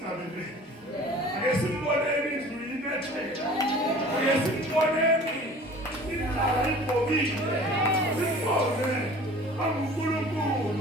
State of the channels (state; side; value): normal; both; correlation 0.45